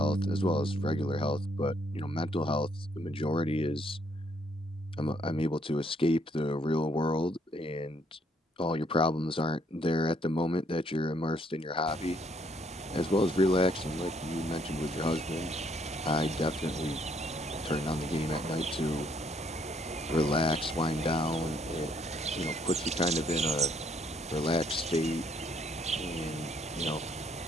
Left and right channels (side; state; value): both; normal; correlation 0.68